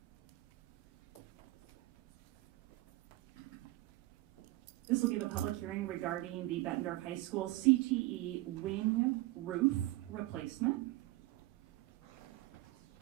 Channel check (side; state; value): left; quieter; 18.7 dB